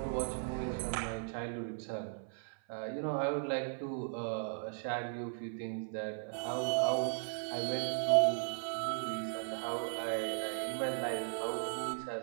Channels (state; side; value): silent; left; 53 dB below the other